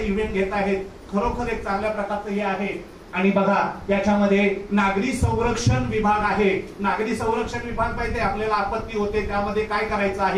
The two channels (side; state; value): both; identical; correlation 1.00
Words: घेत आहेत. खरोखर एक चांगल्या प्रकारचं हे आहे. आणि बघा, याच्यामध्ये नागरी संरक्षण विभाग आहे. नागरी संरक्षण विभाग पाहिजे, आपल्याला आपत्ती होते त्यामध्ये काय करायचं